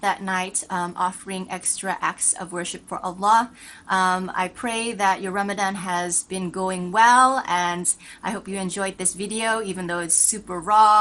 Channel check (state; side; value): identical; both; correlation 1.00